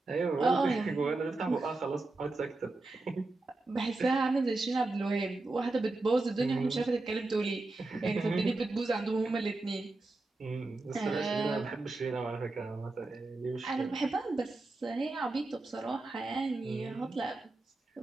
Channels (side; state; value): left; quieter; 3.2 dB